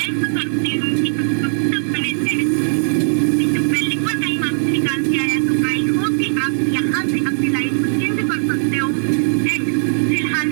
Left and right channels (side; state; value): left; silent; digital silence